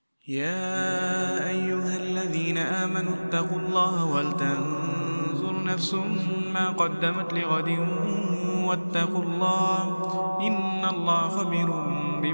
يا أيها الذين آمنوا اتقوا الله ولتنظر نفس ما قدمت لغد واتقوا الله إن الله خبير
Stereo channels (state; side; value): inverted; both; correlation -1.00